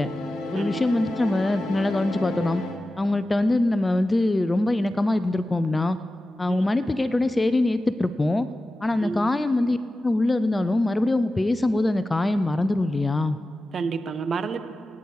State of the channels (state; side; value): normal; both; correlation 0.94